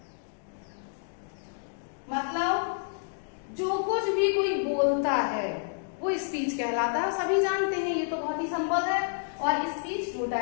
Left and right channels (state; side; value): silent; right; digital silence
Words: मतलब जो कुछ भी कोई बोलता है वो स्पीच कहलाता है। सभी जानते हैं, ये तो बहुत ही सिंपल है। और स्पीच 2